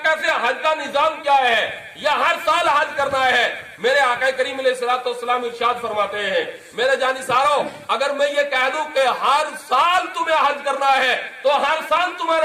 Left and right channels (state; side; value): identical; both; correlation 1.00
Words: کیسے حج کا نظام کیا ہے، یا ہر سال حج کرنا ہے؟ میرے آقا کریم علیہ الصلوۃ والسلام ارشاد فرماتے ہیں میرے جانثاروں اگر میں یہ کہہ دوں کہ ہر سال تمہیں حج کرنا ہے تو ہر سال